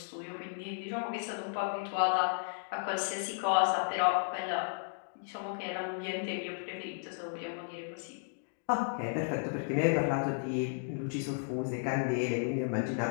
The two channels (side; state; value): right; silent; digital silence